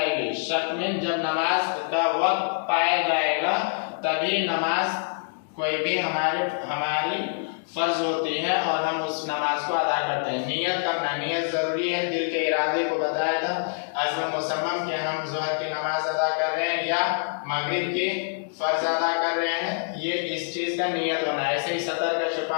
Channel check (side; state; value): right; silent; digital silence